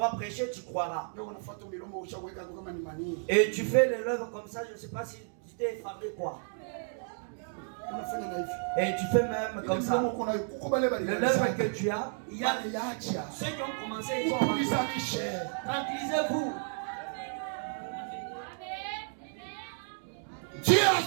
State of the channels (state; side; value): silent; left; 55 dB below the other